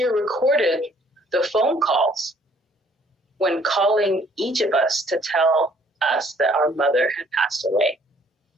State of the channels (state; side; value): normal; both; correlation 0.61